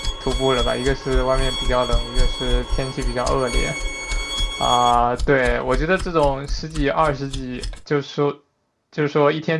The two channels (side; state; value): both; identical; correlation 1.00